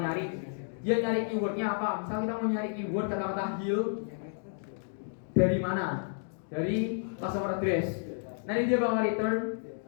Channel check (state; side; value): silent; right; digital silence